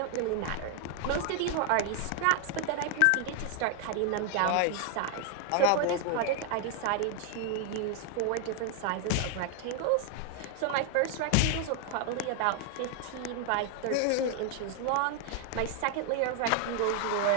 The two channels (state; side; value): different; both; correlation 0.00